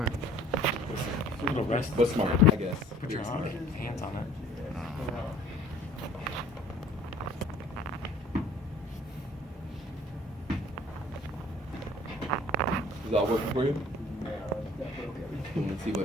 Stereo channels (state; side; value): normal; both; correlation 0.53